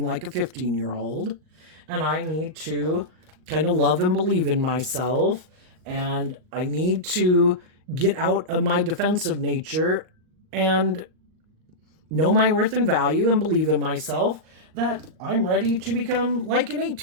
like a 15-year-old. And I need to kind of love and believe in myself. And I need to get out of my defensive nature and know my worth and value and believe in myself that I'm ready to become like an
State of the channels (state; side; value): late; left; 39 ms